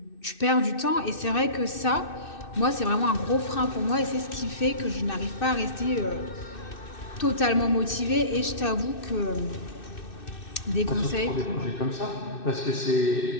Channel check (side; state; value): right; late; 2.6 ms